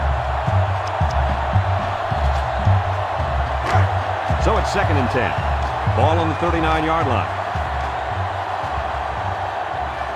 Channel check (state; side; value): identical; both; correlation 1.00